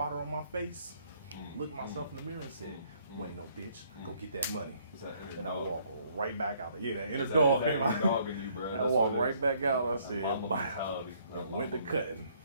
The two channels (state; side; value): inverted; both; correlation -0.65